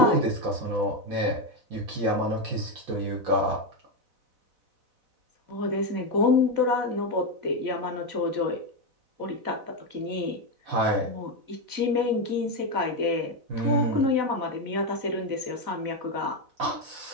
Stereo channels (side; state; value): left; late; 4.0 ms